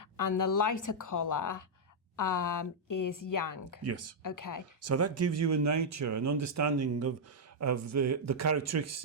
And the lighter colour is Yang. Yes. Okay. So that gives you a nature, an understanding of the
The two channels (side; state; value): both; normal; correlation -0.05